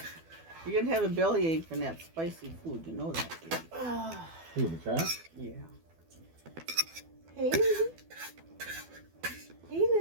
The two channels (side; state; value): left; late; 12 ms